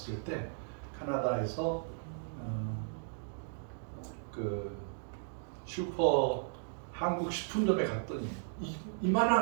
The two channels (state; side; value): silent; left; digital silence